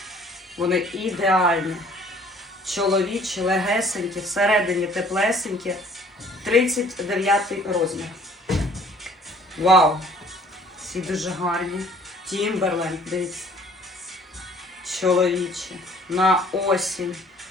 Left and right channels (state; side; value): normal; both; correlation 0.56